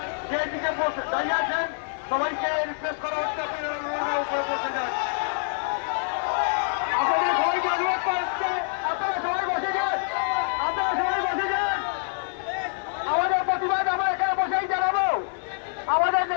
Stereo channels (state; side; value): silent; right; 61 dB below the other